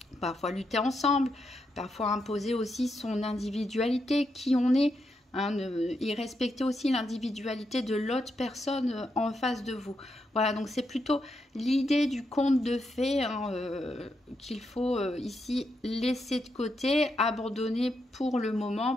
parfois lutter ensemble, parfois imposer aussi son individualité, qui on est, hein, et respecter aussi l'individualité de l'autre personne en face de vous. Voilà, donc c'est plutôt l'idée du conte de fées, hein, qu'il faut ici laisser de côté, abandonner pour le moment,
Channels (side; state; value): both; normal; correlation 0.82